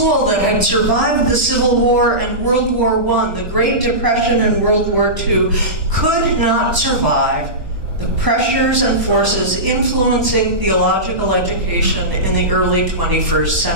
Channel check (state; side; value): late; left; 1.1 ms